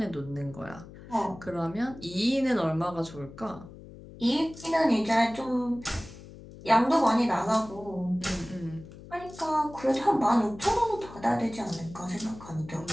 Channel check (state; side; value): noise; left; hum, 17 dB below the sound